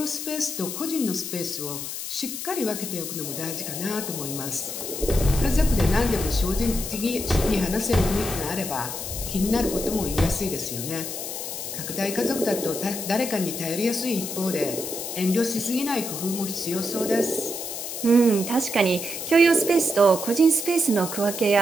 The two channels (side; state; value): left; noise; hiss, 6 dB below the sound